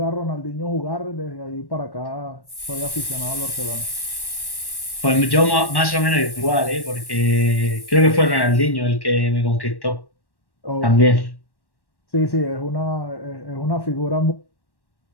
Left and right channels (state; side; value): late; right; 1.1 ms